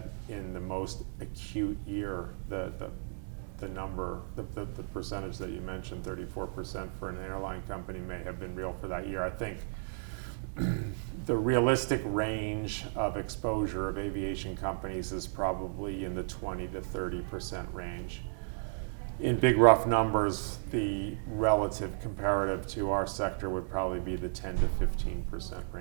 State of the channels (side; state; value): left; silent; digital silence